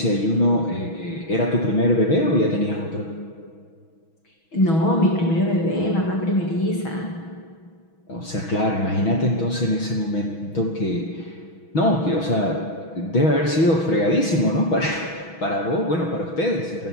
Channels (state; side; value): late; right; 6.2 ms